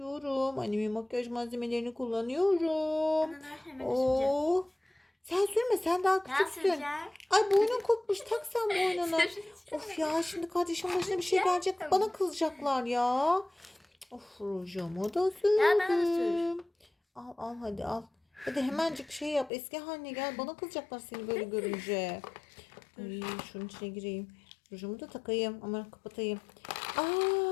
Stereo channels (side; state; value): right; drops out; at 19.5 s